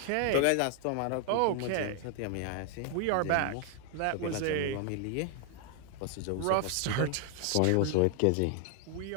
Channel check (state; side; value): different; both; correlation 0.00